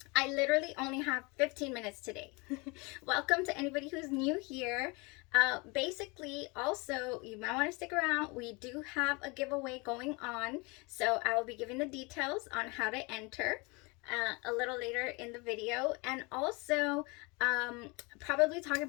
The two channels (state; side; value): quieter; right; 28.1 dB